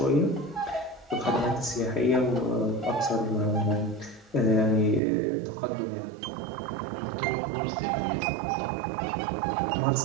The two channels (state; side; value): drops out; left; at 5.0 s